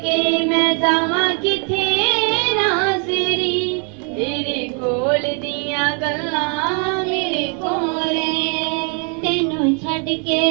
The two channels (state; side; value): quieter; left; 38.7 dB